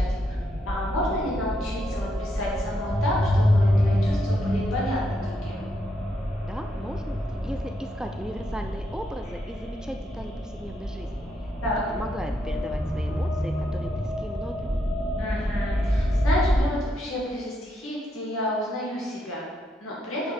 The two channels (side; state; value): both; normal; correlation 0.79